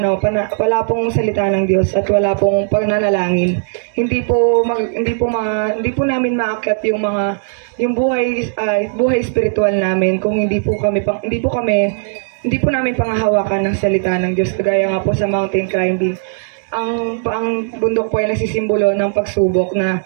wala pong salita ng Diyos at wala pong pananalangin, hindi po namin maakyat yung buhay spiritual namin kung hindi po namin pangahawakan ng salita ng Diyos. Kagaya nga po sa mountain climbing, ang bundok po ay nagsisimbolo ng pagsubok na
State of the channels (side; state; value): left; silent; digital silence